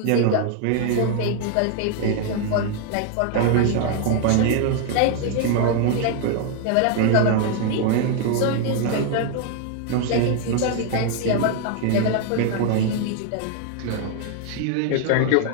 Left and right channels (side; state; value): both; different; correlation 0.00